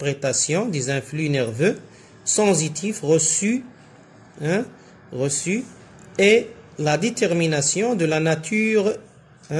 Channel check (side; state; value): both; identical; correlation 1.00